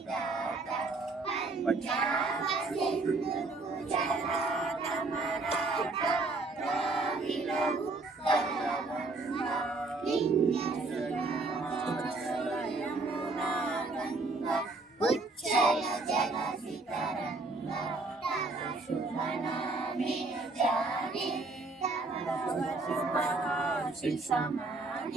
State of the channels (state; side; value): quieter; left; 3.4 dB